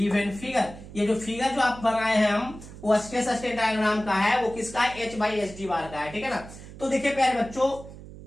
figure. ये जो फिगर जो आप बनाए हैं हम, वो स्ट्रेस स्ट्रेन डायग्राम का है, वो किसका है, H/SD बार का है, ठीक है ना। तो देखिए प्यारे बच्चों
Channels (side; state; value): right; noise; hum, 15 dB below the sound